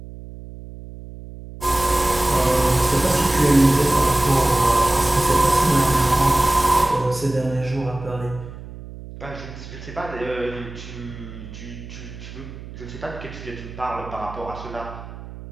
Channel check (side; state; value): right; noise; hum, 14 dB below the sound